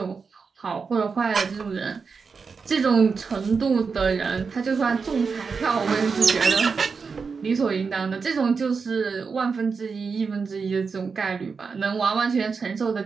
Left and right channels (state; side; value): quieter; left; 5.2 dB